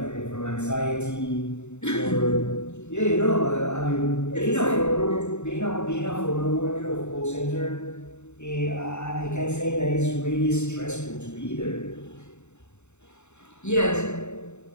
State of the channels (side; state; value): right; late; 0.82 ms